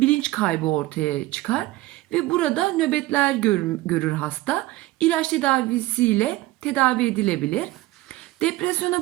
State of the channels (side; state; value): left; quieter; 18.1 dB